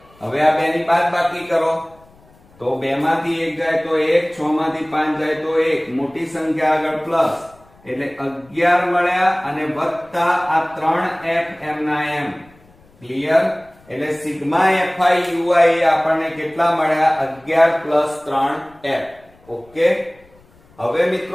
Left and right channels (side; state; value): left; noise; rumble, 29 dB below the sound